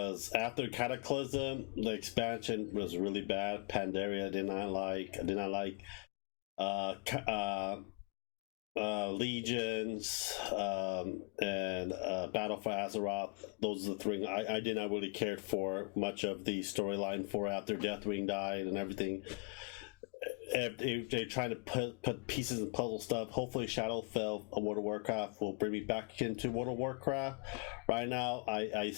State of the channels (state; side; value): quieter; right; 32.7 dB